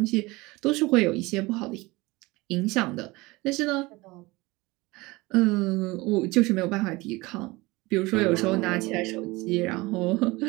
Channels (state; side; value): quieter; left; 22.3 dB